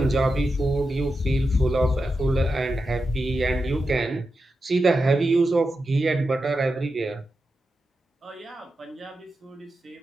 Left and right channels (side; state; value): both; normal; correlation 0.89